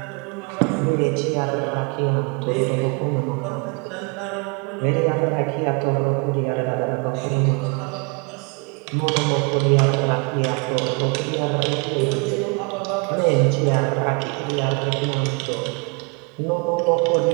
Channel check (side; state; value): left; quieter; 32.2 dB